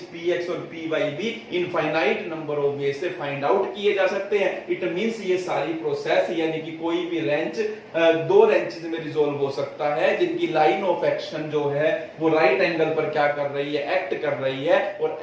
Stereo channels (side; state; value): both; identical; correlation 1.00